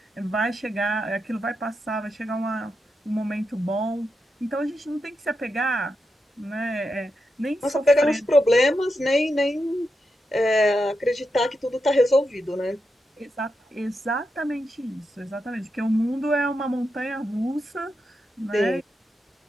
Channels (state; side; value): normal; both; correlation 0.86